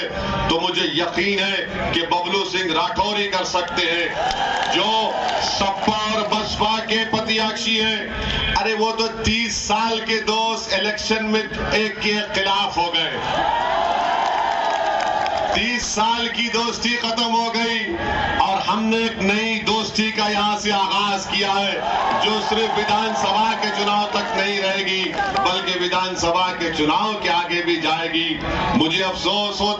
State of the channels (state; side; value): identical; both; correlation 1.00